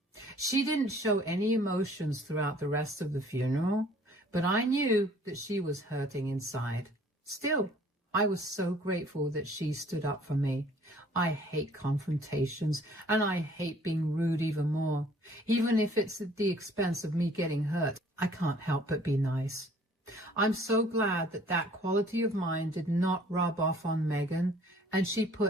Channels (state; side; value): normal; both; correlation 0.56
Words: She didn't show any emotions throughout the rest of the funeral, but I knew that she was hurting inside. Still, I was so grateful that she stood up for me. I hate confrontations, and I hate being rude even more. Even if it's at the expense of me getting hurt, I can't help but be nice. I'm so glad that that quality of mine did not rub off on Megan, and she